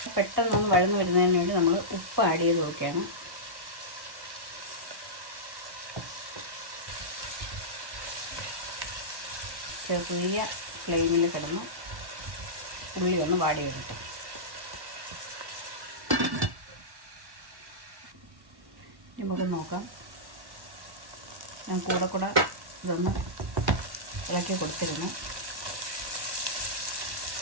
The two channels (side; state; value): left; late; 1.1 ms